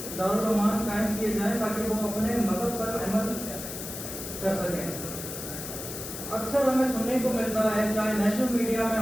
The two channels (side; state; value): left; noise; hiss, 8 dB below the sound